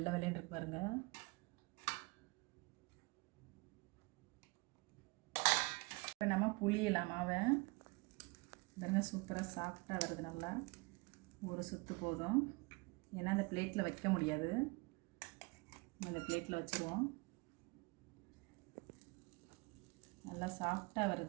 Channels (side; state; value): left; quieter; 27.0 dB